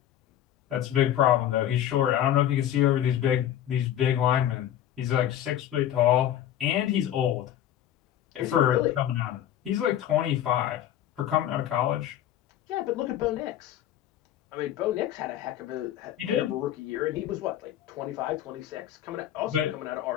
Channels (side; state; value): right; quieter; 11.4 dB